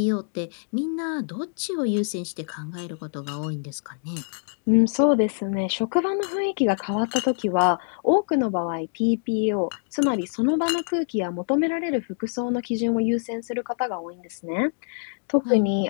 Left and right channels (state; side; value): silent; right; digital silence